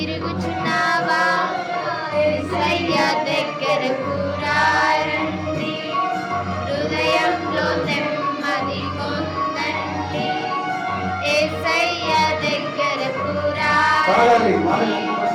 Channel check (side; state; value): both; identical; correlation 1.00